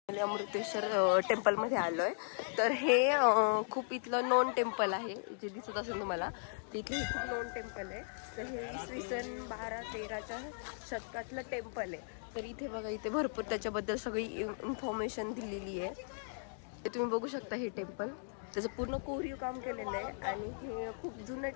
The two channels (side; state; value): right; silent; digital silence